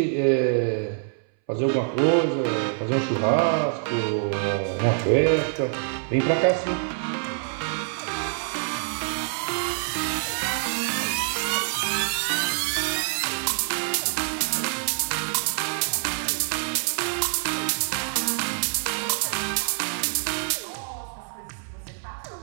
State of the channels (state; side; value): silent; left; 61 dB below the other